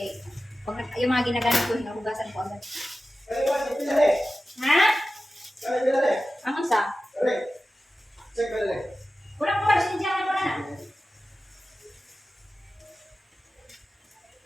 Pag yung mga ginagamit ko, hinahugasan ko agad. Ha? Ang isa? Wala ko ba? Sindihan ko na.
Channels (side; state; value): both; normal; correlation 0.94